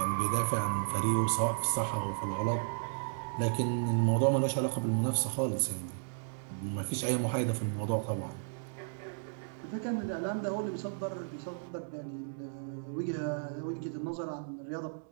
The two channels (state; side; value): silent; left; digital silence